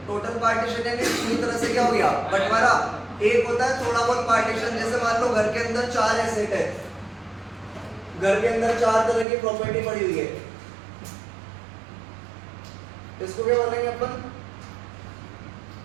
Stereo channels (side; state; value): left; drops out; at 9.2 s